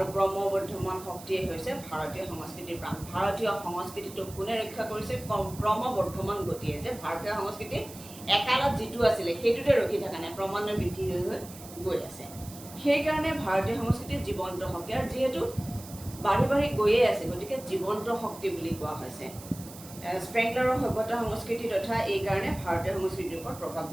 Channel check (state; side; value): noise; right; hiss, 16 dB below the sound